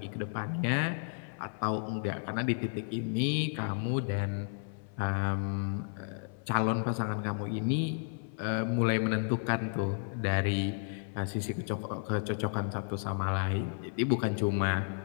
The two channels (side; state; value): right; silent; 56 dB below the other